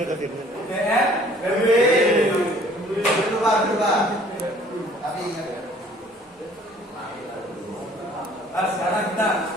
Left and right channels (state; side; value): normal; both; correlation 0.55